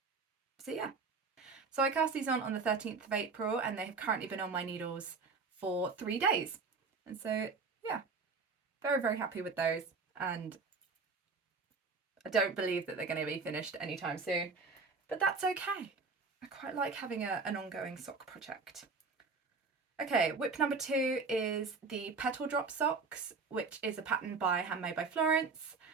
yeah, so I cast these on the 13th of April, and they have currently been on my needles for 3 days. And so yeah, very, very happy with those, and I don't believe that they're going to be finished anytime soon, but that's okay. I quite like having an ongoing sock project. Okay, whip number 2 is the Petal drop socks, which is a pattern by Handmade by Florence,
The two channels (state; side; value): quieter; left; 4.5 dB